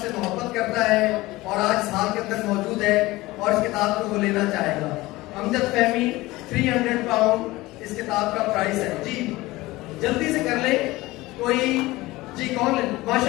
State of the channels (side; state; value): right; quieter; 19.5 dB